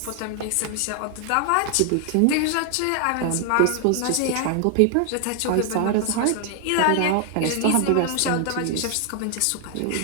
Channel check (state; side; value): different; both; correlation 0.00